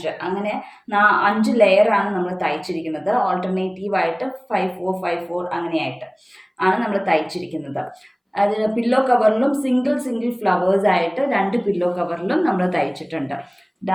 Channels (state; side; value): identical; both; correlation 1.00